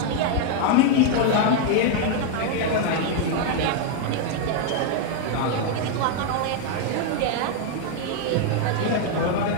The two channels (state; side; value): different; both; correlation 0.00